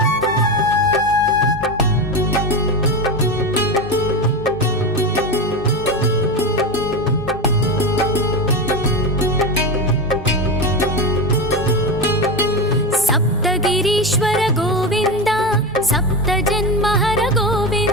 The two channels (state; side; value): normal; both; correlation 0.18